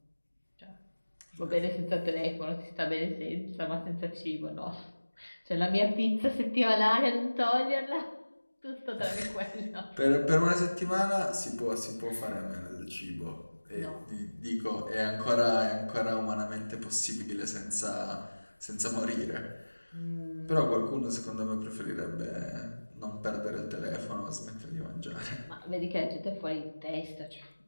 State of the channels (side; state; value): both; inverted; correlation -1.00